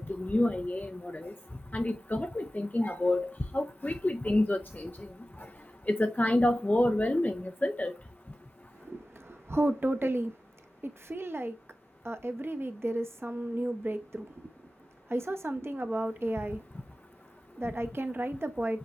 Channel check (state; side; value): normal; both; correlation 0.95